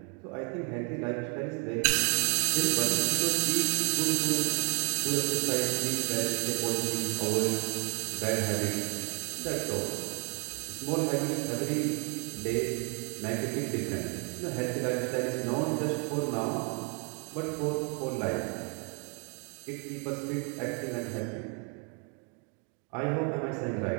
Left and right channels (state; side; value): quieter; left; 37.3 dB